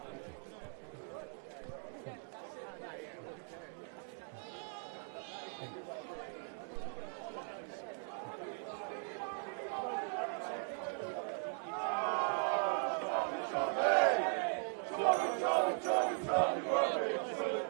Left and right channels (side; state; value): left; silent; 52 dB below the other